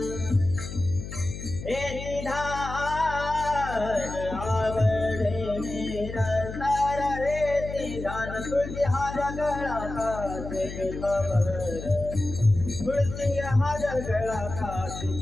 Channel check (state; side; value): noise; left; hum, 9 dB below the sound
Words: हे निधान आवड़े निरंतर हे निधान तुलसी हार गला कासे पितामर तुलसी हार गला कासे